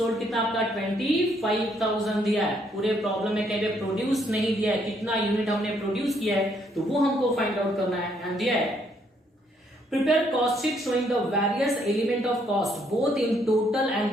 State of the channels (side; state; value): both; normal; correlation 0.70